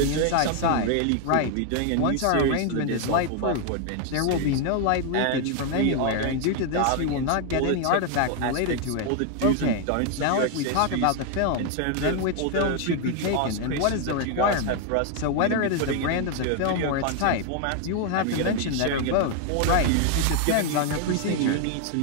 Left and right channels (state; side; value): different; both; correlation 0.00